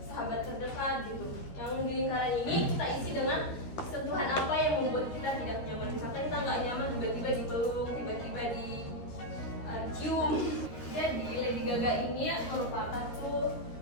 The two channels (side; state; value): right; late; 13 ms